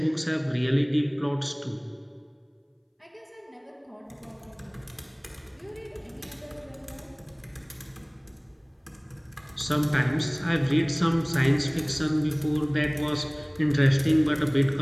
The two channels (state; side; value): identical; both; correlation 1.00